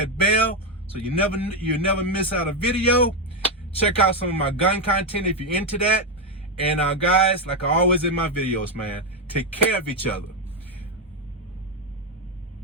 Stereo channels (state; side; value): normal; both; correlation 0.06